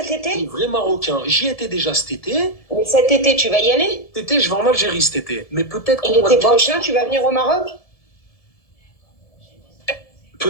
Les été? vrais Marocains. J'y étais déjà cet été. Mais cet été, tu vas y aller? Cet été, je vais en Algérie cet été. Mais Et l'été prochain, tu vas venir au Maroc?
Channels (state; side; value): late; right; 1.7 ms